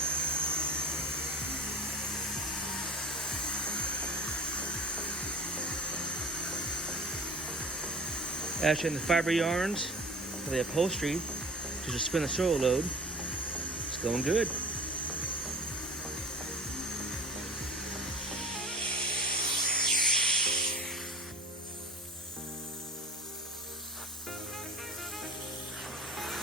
Actually, in the fiber yarns for the upholstery to just spin the soil load. It's going good.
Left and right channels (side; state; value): both; normal; correlation 0.39